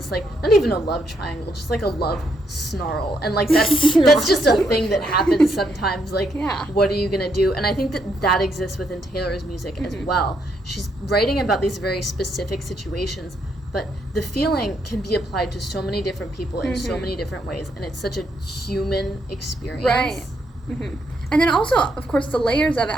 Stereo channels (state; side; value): normal; both; correlation 0.75